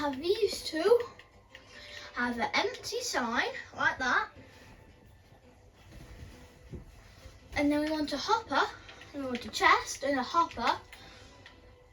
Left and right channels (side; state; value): both; identical; correlation 1.00